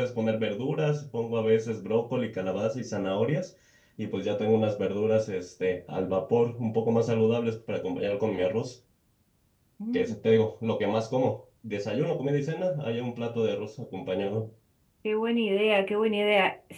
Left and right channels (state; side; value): identical; both; correlation 1.00